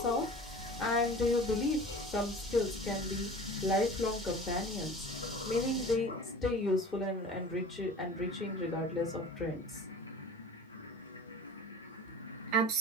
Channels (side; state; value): both; normal; correlation 0.40